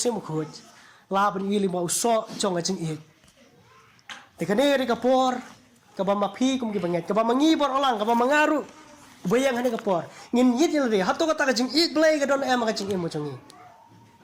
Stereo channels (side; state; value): both; identical; correlation 1.00